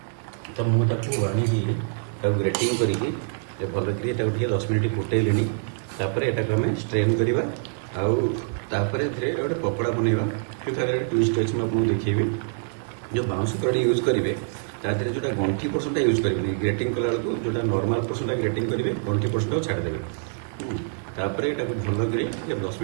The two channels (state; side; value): silent; left; digital silence